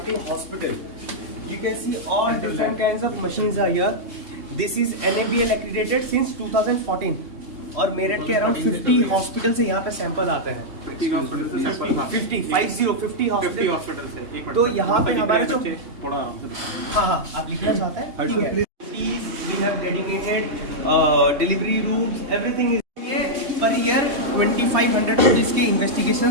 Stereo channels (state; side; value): late; left; 3.4 ms